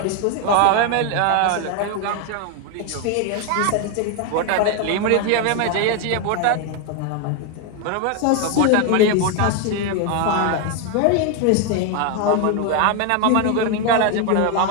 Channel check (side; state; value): both; different; correlation 0.01